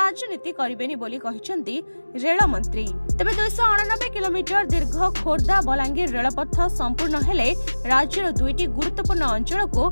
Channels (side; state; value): both; inverted; correlation -1.00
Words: करिबेनी बोली कहिसंती रेल मंत्री। तेबे 289 किलोमीटर दीर्घ खोर्धा बलांगीर रेलपथ संपूर्ण हेले राज्यर दुईटी गुरुत्वपूर्ण अंचल को